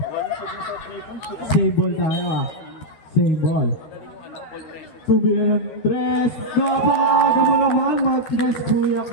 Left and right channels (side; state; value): right; late; 13 ms